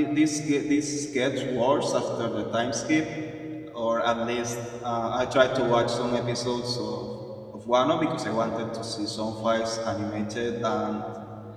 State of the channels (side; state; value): both; identical; correlation 1.00